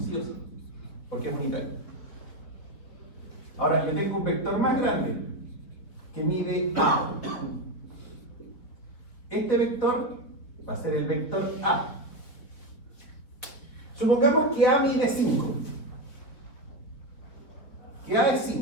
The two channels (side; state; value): right; late; 3.8 ms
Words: sí o sí, porque es unitario. Ahora, yo tengo un vector más grande que mide A. Este vector va a ser el vector A. Supongamos que A mide 5. Que A es